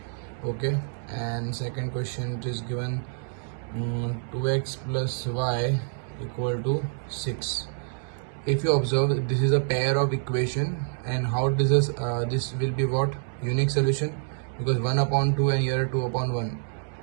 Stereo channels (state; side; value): silent; left; 60 dB below the other